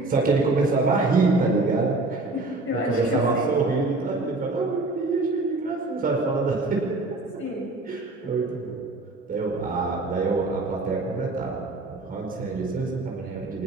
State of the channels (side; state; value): left; quieter; 3.1 dB